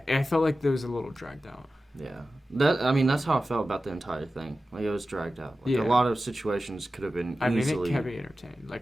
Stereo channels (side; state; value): both; normal; correlation 0.94